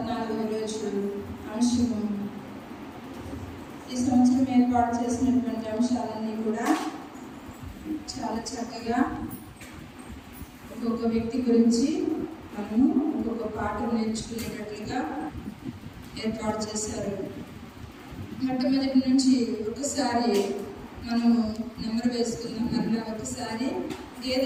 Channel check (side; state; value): both; identical; correlation 1.00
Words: రోజు అంశము. ఈ సంవత్సరం ఏర్పాటు చేసినటువంటి అంశాలన్నీ కూడా చాలా చక్కగా ఒక్కొక్క వ్యక్తి గురించి మనము ఒక్కొక్క పాఠం నేర్చుకునేటట్లుగా ఏర్పాటు చేశారు. మొట్టమొదటి నుంచి ఒకసారి మనము నెంబర్ వేసుకుందాం. మరలా ఒకసారి